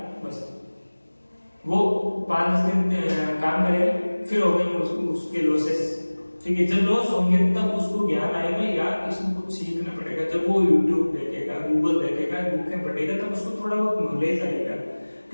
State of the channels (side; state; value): both; inverted; correlation -1.00